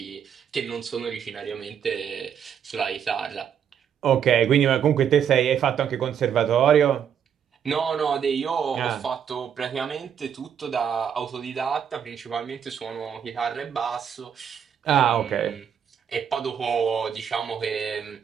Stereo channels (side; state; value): left; quieter; 8.3 dB